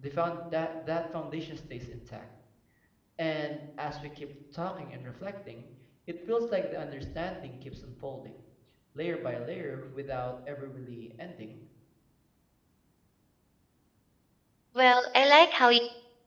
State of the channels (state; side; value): identical; both; correlation 1.00